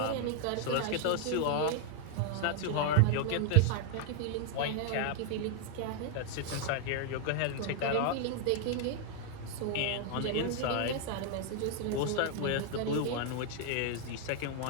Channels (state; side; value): different; both; correlation 0.00